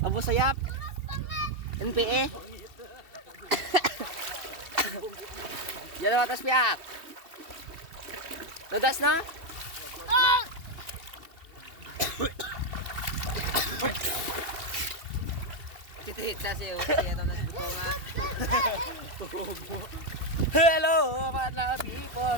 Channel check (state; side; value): late; left; 2.7 ms